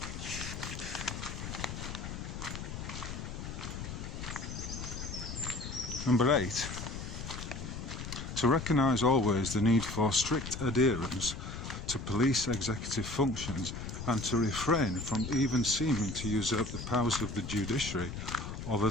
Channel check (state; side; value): noise; left; rumble, 7 dB below the sound